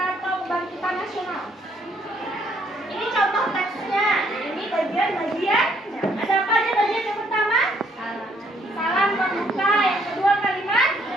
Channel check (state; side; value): normal; both; correlation 0.68